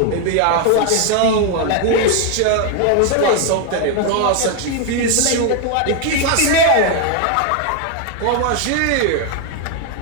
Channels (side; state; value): both; different; correlation 0.01